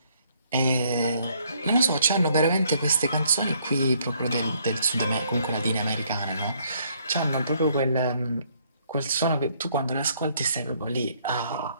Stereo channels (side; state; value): both; inverted; correlation -0.67